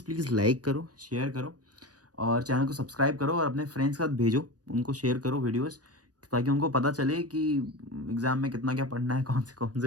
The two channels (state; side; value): late; left; 0.68 ms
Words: प्लीज़ लाइक करो, शेयर करो, और चैनल को सब्सक्राइब करो, और अपने फ्रेंड्स के साथ भेजो, उनको शेयर करो वीडियोस, ताकि उनको पता चले कि एग्ज़ाम में कितना क्या पढ़ना है, कौन